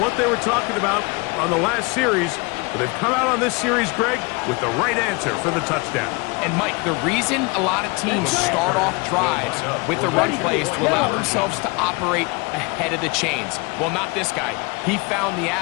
what they were talking about on the last series, but they've come out on this series, Greg, with the right answer for the touchdown. And, Mike, the reason a lot of teams start off drives with the run plays to allow themselves to operate ahead of the chains. Well, not this guy. He found the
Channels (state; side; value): quieter; right; 28.2 dB